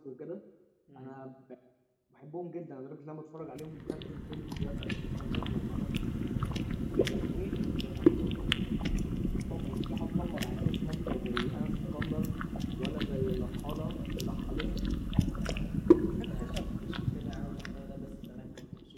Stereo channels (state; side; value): identical; both; correlation 1.00